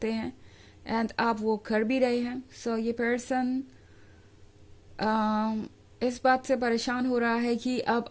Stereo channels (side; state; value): both; identical; correlation 1.00